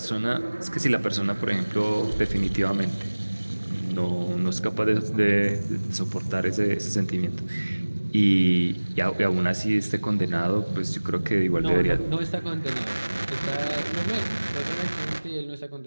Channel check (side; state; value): both; inverted; correlation -1.00